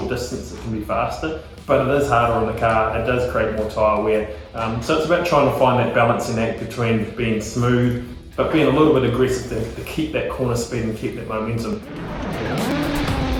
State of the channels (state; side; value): identical; both; correlation 1.00